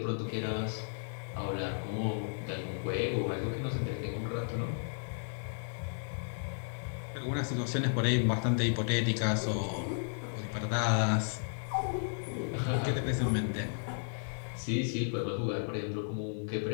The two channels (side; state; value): right; silent; digital silence